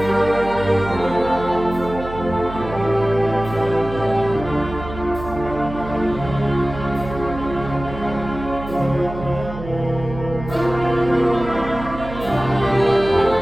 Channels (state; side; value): noise; right; hum, 11 dB below the sound